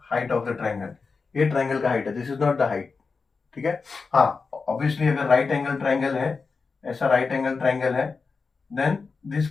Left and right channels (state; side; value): quieter; right; 4.6 dB